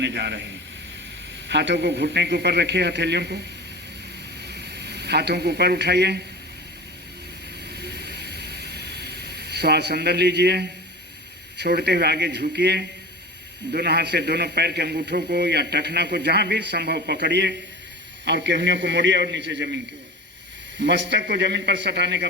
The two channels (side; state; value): both; normal; correlation 0.33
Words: जा रहे हैं। हाथों को घुटने के ऊपर रखिए, हथेलियों को, हाथों को ऊपर उठाइए, श्वास अंदर लीजिए, छोड़ते हुए आगे झुकिए। दोनों हाथ से दोनों पैर के अंगूठों को या टखना को जहां भी संभव पकड़िए और केहनियों को मोड़िए और नीचे जमीन की ओर। मस्तक को जमीन पर सटाने का